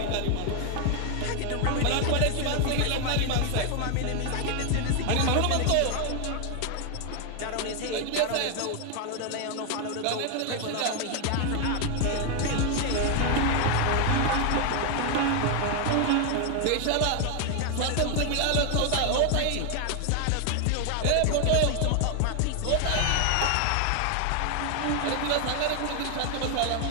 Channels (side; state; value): both; different; correlation 0.00